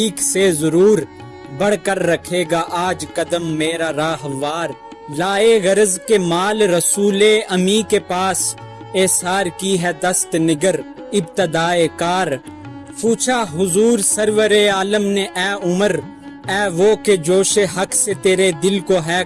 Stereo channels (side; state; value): both; identical; correlation 1.00